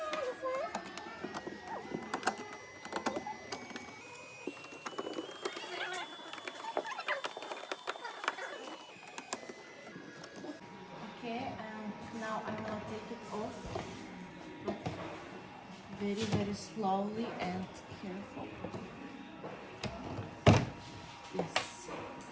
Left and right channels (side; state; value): both; identical; correlation 1.00